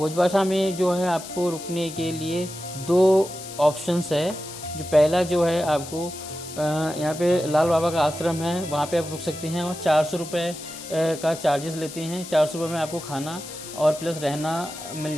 में जो है आपको रुकने के लिए 2 ऑप्शंस है। जो पहला जो है आपको यहाँ पे लाल बाबा का आश्रम है, वहाँ पे आप रुक सकते हैं और 400 रुपये का चार्जेस लेते हैं। 400 रुपये में आपको खाना और प्लस रहना मिल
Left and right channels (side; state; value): left; noise; hiss, 13 dB below the sound